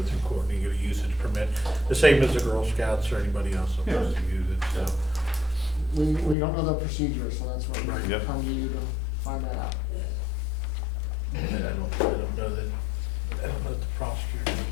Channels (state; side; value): drops out; right; at 6.4 s